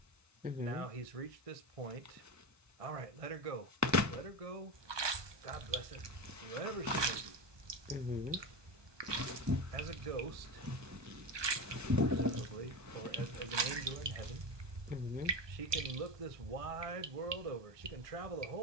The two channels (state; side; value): late; left; 1.2 ms